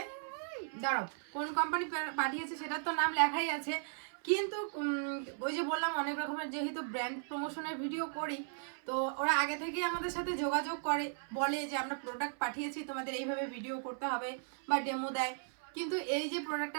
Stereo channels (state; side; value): silent; left; 53 dB below the other